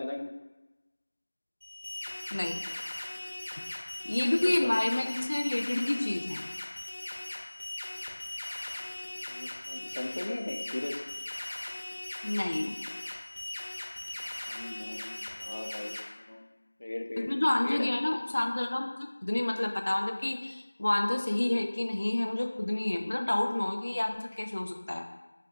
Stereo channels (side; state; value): both; inverted; correlation -1.00